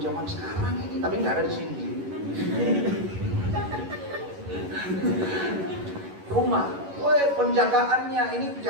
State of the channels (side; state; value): left; late; 11 ms